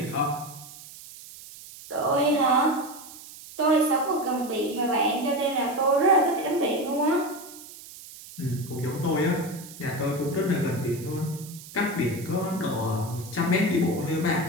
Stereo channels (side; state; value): right; noise; hiss, 16 dB below the sound